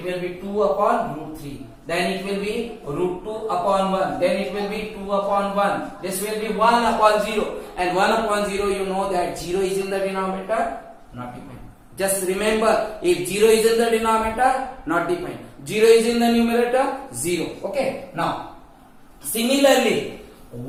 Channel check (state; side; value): identical; both; correlation 1.00